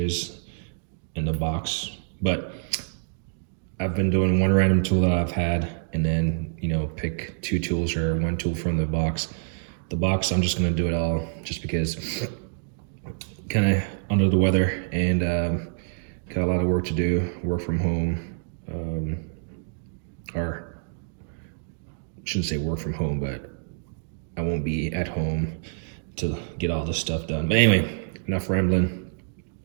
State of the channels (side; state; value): left; silent; digital silence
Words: in the box. But I've been doing one random tool that I've had and then, pick 2 tools or 1 tool from the box. The box, I'm just gonna do it all just because kind of under the weather and got a lot of work to do, work from home, or shouldn't say work from home, but I won't be at home to get all this stuff done. But anyway, enough rambling.